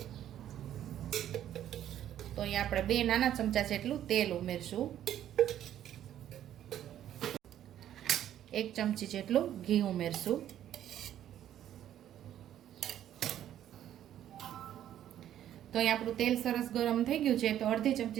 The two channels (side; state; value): left; quieter; 11.3 dB